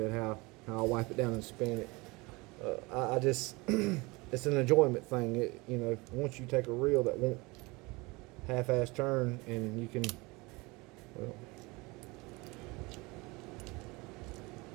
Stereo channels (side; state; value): left; quieter; 24.6 dB